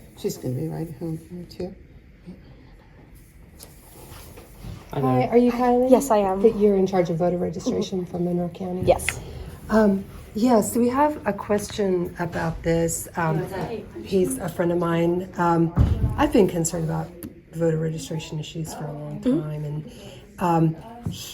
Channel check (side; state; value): both; identical; correlation 1.00